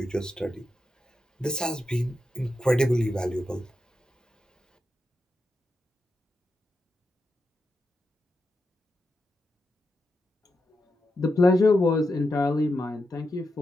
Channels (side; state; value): both; normal; correlation 0.87